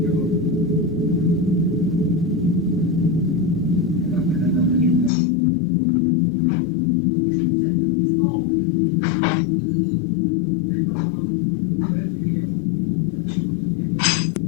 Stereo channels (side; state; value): right; drops out; at 5.1 s